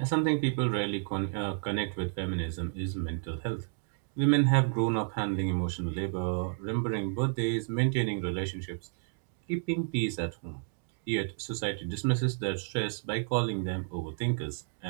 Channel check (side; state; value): left; silent; digital silence